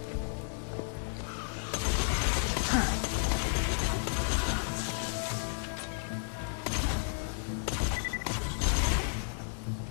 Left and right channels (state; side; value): silent; right; digital silence